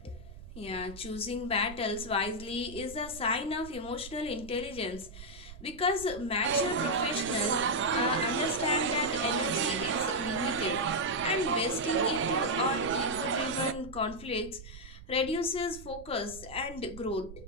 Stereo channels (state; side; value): noise; right; rumble, 15 dB below the sound